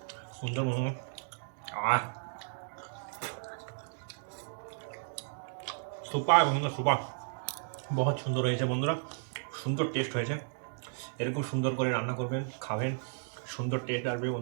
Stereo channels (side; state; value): left; silent; digital silence